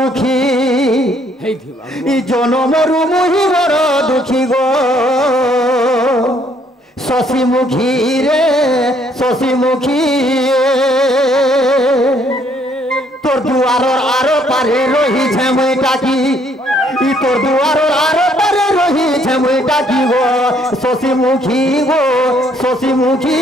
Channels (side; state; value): both; normal; correlation 0.66